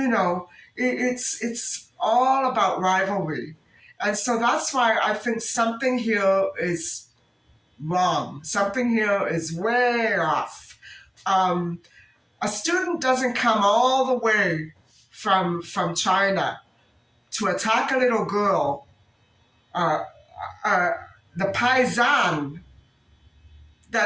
it's all about rivalry. And so that's why I think something here is wrong. Something here is way off. Um, a student doesn't come all the way from China to attack a little girl, uh, uh, the paisan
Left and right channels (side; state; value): both; identical; correlation 1.00